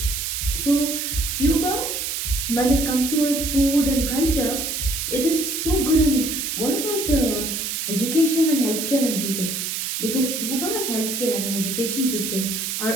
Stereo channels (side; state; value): right; noise; hiss, 3 dB below the sound